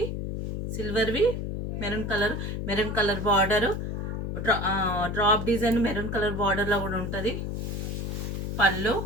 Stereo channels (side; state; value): left; noise; hum, 3 dB below the sound